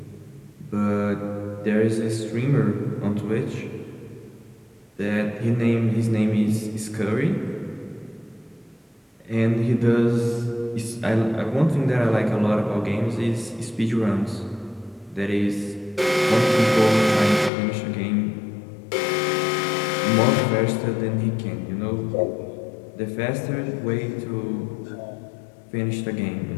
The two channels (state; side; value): drops out; right; at 17.5 s